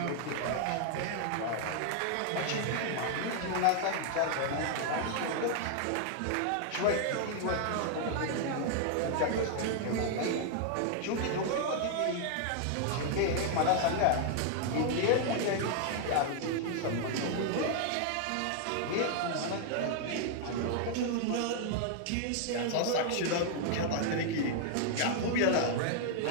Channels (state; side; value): different; both; correlation 0.00